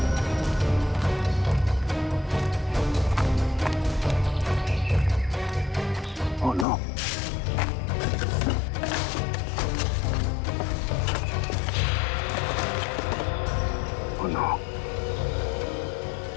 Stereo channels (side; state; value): right; drops out; at 6.7 s